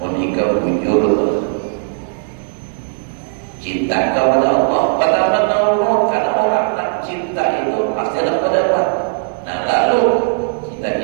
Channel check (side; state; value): left; silent; digital silence